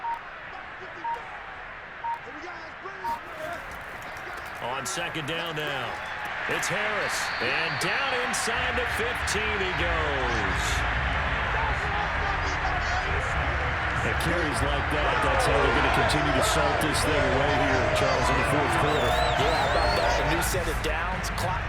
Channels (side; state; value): both; identical; correlation 1.00